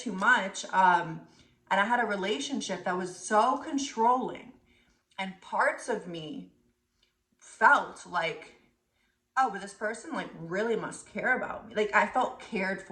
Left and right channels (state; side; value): identical; both; correlation 1.00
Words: much. And I had a relationship that was so controlling, and parts of me felt like, oh, but this person like really must care about me. Like I felt cared